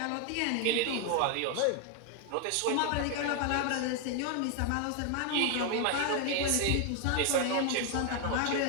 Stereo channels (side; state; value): both; different; correlation 0.00